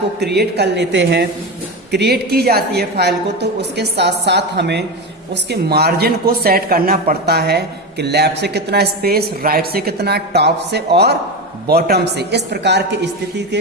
क्रिएट कर लेते हैं, क्रिएट की जाती है फाइल को, तो उसके साथ साथ हमें उसके मार्जिन को सेट करना पड़ता है कि लेफ्ट से कितना स्पेस, राइट से कितना, टॉप से और बॉटम से। इस प्रकार की स्थिति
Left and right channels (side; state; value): both; normal; correlation 0.18